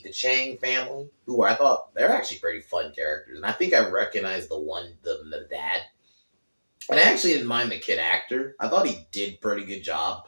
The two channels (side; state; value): both; inverted; correlation -1.00